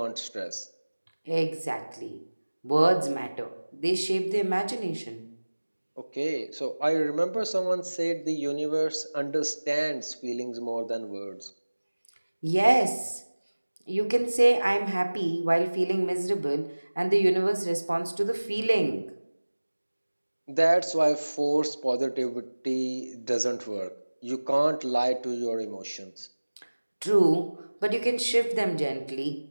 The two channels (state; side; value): inverted; both; correlation -1.00